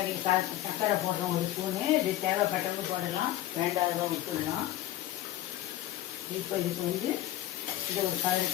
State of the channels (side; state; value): right; quieter; 13.9 dB